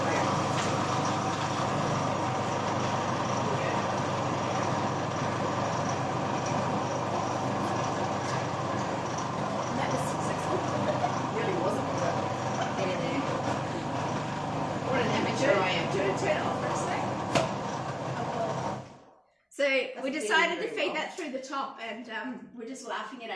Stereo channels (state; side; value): identical; both; correlation 1.00